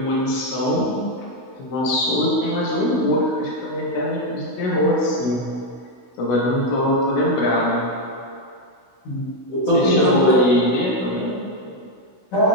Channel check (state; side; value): late; right; 16 ms